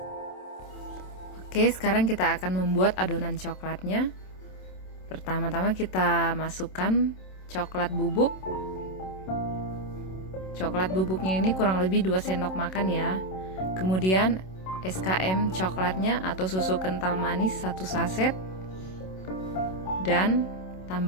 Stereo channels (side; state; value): right; late; 27 ms